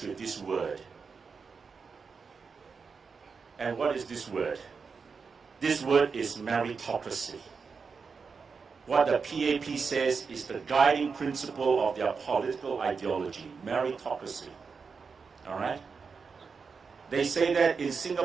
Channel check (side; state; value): left; quieter; 5.3 dB